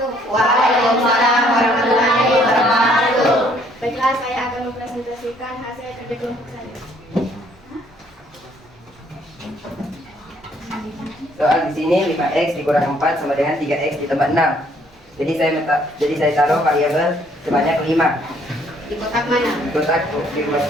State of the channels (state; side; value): normal; both; correlation 0.64